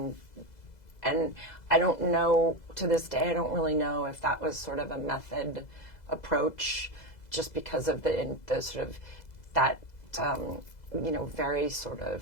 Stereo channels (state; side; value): late; right; 2.0 ms